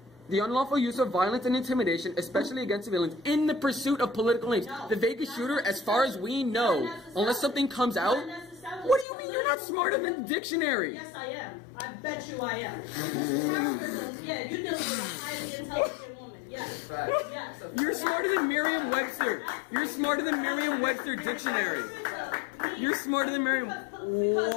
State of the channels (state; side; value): drops out; right; at 9.1 s